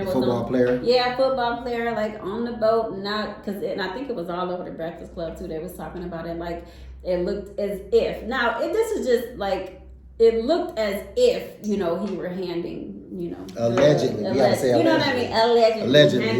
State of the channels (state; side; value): identical; both; correlation 1.00